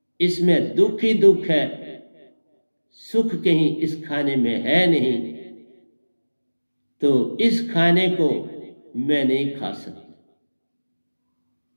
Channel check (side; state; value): both; inverted; correlation -1.00